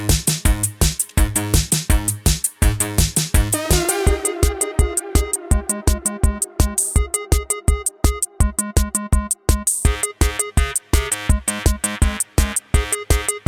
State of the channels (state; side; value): identical; both; correlation 1.00